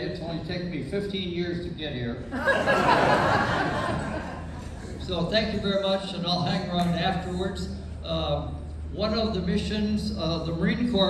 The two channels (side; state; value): both; identical; correlation 1.00